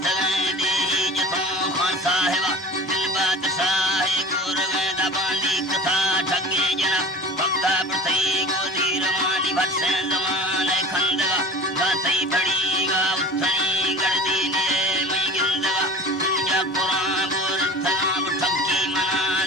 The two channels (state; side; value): normal; both; correlation 0.39